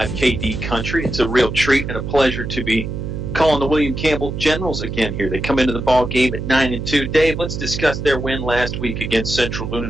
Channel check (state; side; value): noise; right; hum, 5 dB below the sound